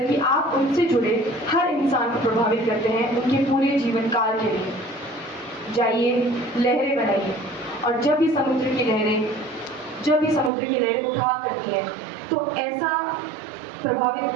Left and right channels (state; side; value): drops out; left; at 10.5 s